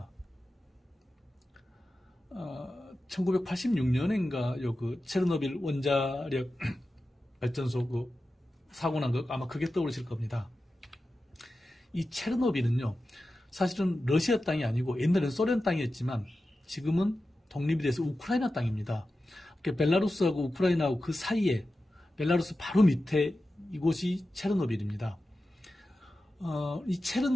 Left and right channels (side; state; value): both; normal; correlation 0.93